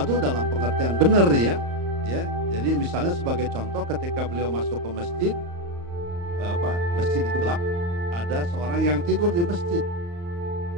dalam pengertian benar ya. Jadi misalnya sebagai contoh ketika beliau masuk ke masjid, masjid itu gelap, ada seorang yang tidur di masjid.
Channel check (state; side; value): late; left; 35 ms